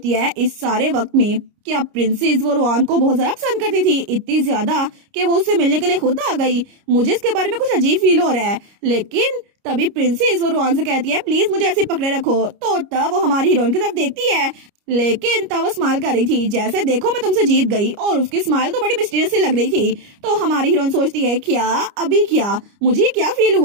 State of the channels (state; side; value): late; left; 29 ms